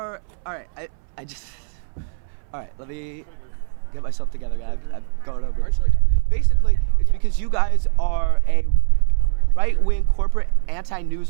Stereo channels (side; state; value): left; silent; 65 dB below the other